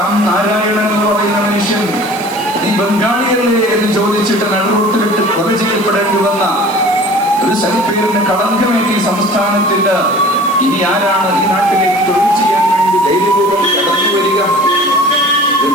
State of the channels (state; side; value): noise; right; hiss, 18 dB below the sound